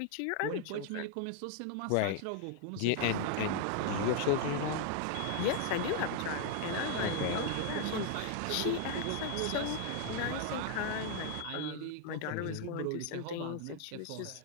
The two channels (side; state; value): both; different; correlation 0.00